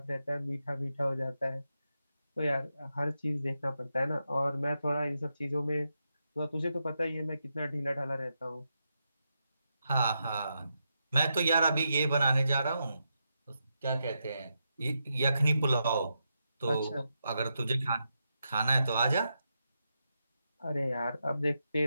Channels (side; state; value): both; inverted; correlation -0.85